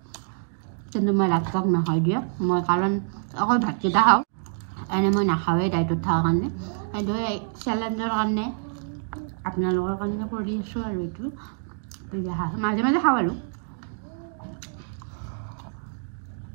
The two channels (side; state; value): left; silent; digital silence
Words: কিন্তু মই ৰাক্ষক নহয় দিয়া মই কাৰণ অকল ভাতকেইটা খাওঁ এনে মই নাখাওঁৱেই ডাইটত থকাৰ কাৰণে সেইটো চেলেঞ্জৰ কাৰণে আপোনালোকৰ কাৰণে কৰি আছোঁ আৰু এইটো মাজে মাজে খাওঁ আৰু